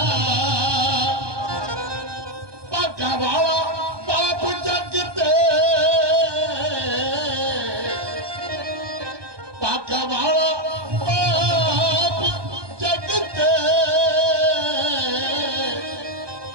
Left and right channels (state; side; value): late; left; 1.2 ms